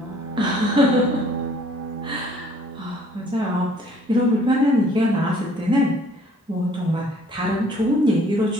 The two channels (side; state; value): both; normal; correlation 0.58